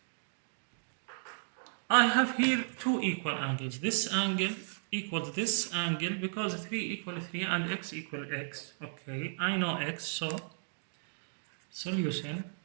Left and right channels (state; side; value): silent; left; digital silence